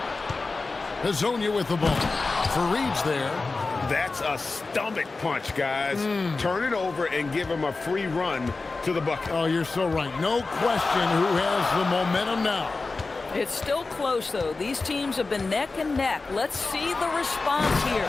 Hazonia with the ball. Fareed's there. That's a stomach punch, guys. Turn it over and give him a free run to the bucket. Oh, you're so right. No question who has the momentum now. It's still close, though. These teams have been neck and neck. Let's see the response here.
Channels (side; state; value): right; quieter; 3.8 dB